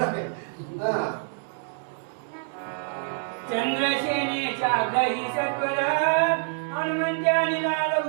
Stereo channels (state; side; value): silent; left; 61 dB below the other